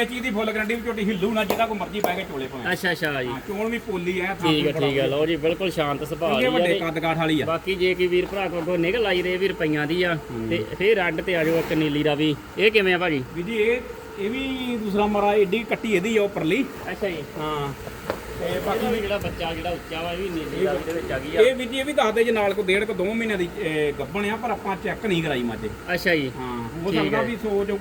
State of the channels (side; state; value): both; identical; correlation 1.00